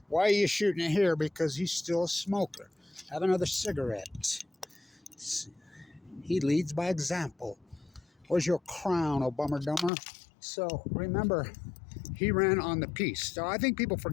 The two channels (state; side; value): drops out; right; at 9.9 s